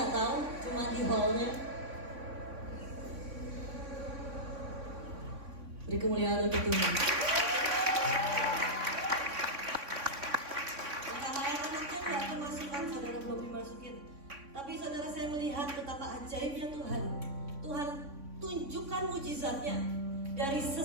tahu, cuma di hallnya. Beri kemuliaan untuk Tuhan. Anak-anaknya nggak kemasukan, saudara belum dimasukin. Tapi saudara, saya melihat betapa ajaibnya Tuhan. Tuhan tunjukkan mujizatnya dari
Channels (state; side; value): late; left; 3.6 ms